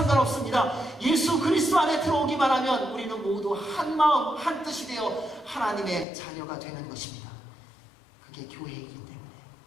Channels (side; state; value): right; drops out; at 6.1 s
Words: 예수 그리스도 안에 들어오기만 하면 우리는 모두 한 마음, 한 뜻이 되어 하나님의 자녀가 되는 것입니다. 그게 교회이기 때문에.